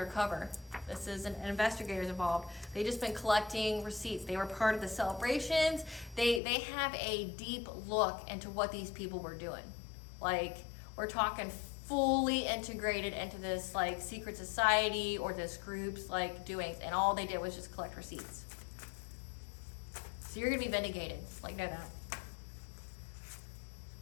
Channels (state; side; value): drops out; right; at 6.4 s